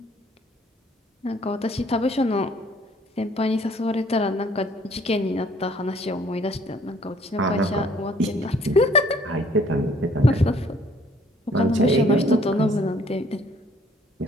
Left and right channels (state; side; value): normal; both; correlation 0.60